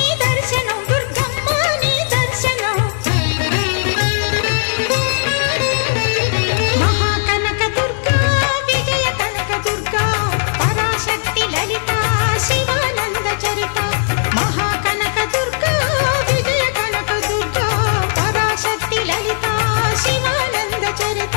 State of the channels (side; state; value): right; silent; digital silence